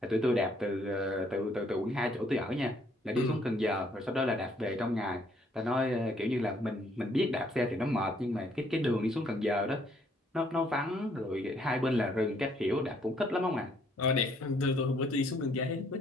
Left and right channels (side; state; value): both; normal; correlation 0.66